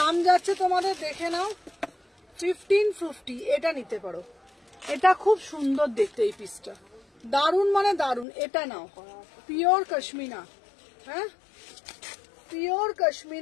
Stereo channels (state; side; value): drops out; right; at 8.2 s